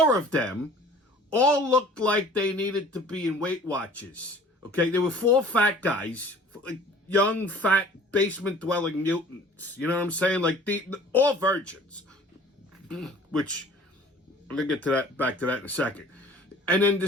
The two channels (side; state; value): both; normal; correlation 0.49